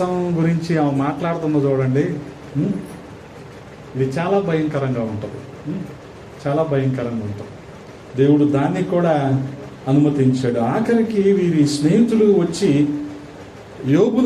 గురించి ఆమె మాట్లాడుతున్న చూడండి, ఇది చాలా భయంకరంగా ఉంటుంది. దేవుడు దాన్ని కూడా అనుమతించాడు. ఆఖరికి వీరి స్నేహితులు వచ్చి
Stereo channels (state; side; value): identical; both; correlation 1.00